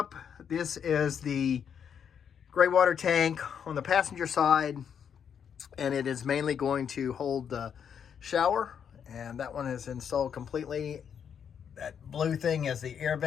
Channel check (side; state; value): right; quieter; 7.8 dB